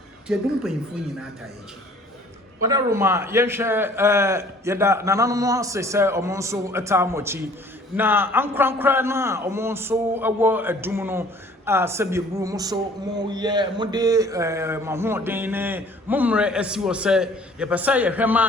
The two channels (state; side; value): normal; both; correlation 0.53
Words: ti adum panyimfo nyina atayechi wada Roma ye hwe yeda nananom se omo nso atamochi na ankrankra na omo nso ewo adum no a sebieburu mo so mo ye mo de mahoden ne momre asiwo se ye pesa ye